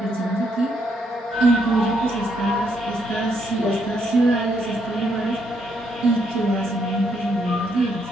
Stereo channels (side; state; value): both; normal; correlation 0.74